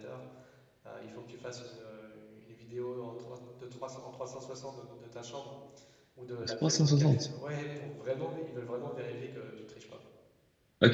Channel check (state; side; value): identical; both; correlation 1.00